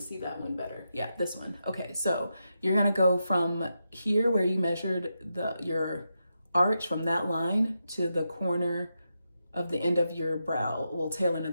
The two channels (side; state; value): both; inverted; correlation -0.86